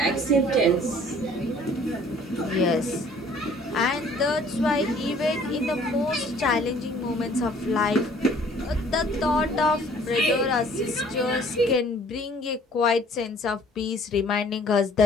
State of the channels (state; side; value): normal; both; correlation 0.55